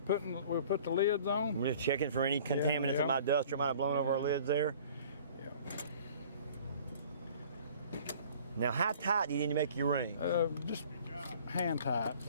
we'll put the lids on. I'm just checking for any contaminants yeah. in my duster might have blown over our lids there. Yeah. Now, how tight do you need to make your ring? Just hand tight.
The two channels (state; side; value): inverted; both; correlation -0.50